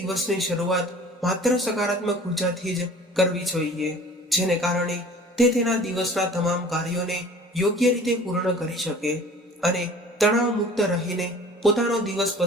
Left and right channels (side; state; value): both; normal; correlation 0.46